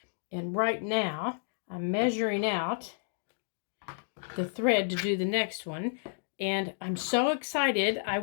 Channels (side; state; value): right; silent; digital silence